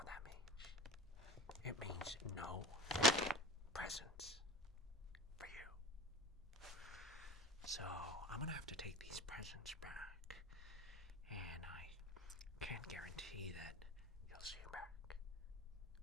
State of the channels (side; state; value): both; normal; correlation 0.36